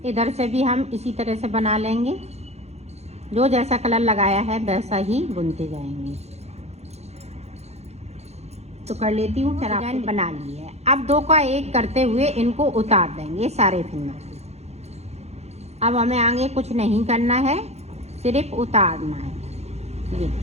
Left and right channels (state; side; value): late; left; 0.31 ms